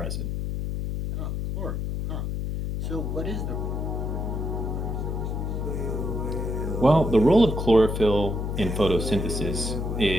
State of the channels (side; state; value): left; noise; hum, 2 dB below the sound